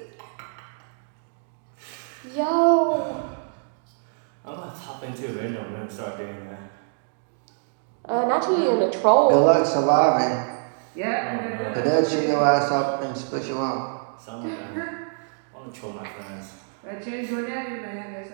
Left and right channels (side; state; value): left; silent; digital silence